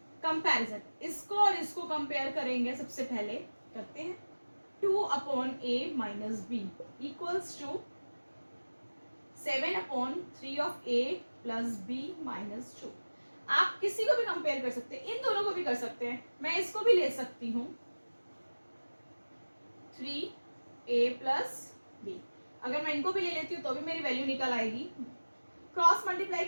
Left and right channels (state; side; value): inverted; both; correlation -1.00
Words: कंपैरिजन, इसको और इसको कंपेयर करेंगे। सबसे पहले करते हैं 2 upon a minus b equals to 7 upon 3 of a plus b minus 2। आप किसी को भी कंपेयर कर सकते हैं, इन दोनों को भी कर सकते हैं। मैं इसको भी ले सकती हूँ 3a plus b। अगर मैं इनको भी ले लेती हूँ तो भी मेरी वैल्यू निकल आएगी। क्रॉस मल्टीप्लाई